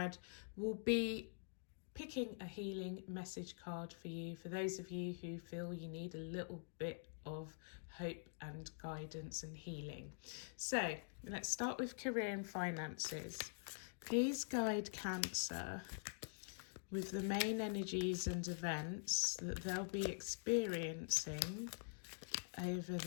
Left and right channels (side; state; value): right; silent; digital silence